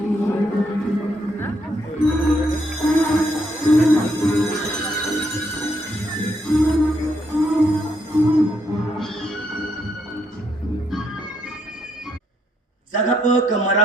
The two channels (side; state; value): both; normal; correlation 0.74